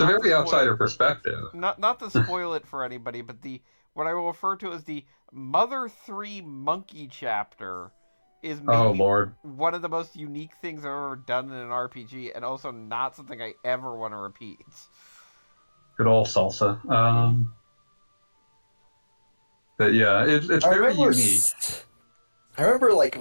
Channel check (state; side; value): inverted; both; correlation -1.00